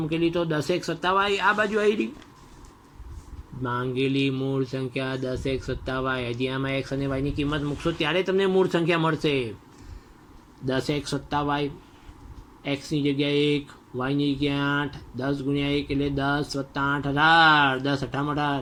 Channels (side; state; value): both; identical; correlation 1.00